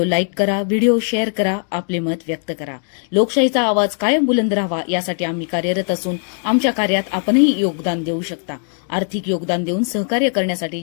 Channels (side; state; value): right; silent; 55 dB below the other